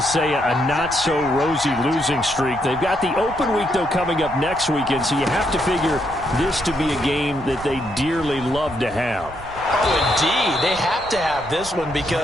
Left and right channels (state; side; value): noise; right; rumble, 16 dB below the sound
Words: say a not-so-rosy losing streak. They've got the open week, though, coming up next weekend, so you have to figure this to be a game that they dearly love to have. Oh, indeed. They have to have this one